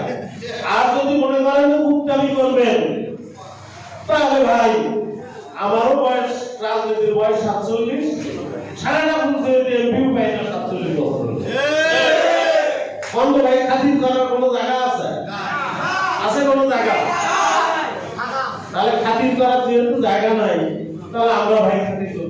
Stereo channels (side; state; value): both; identical; correlation 1.00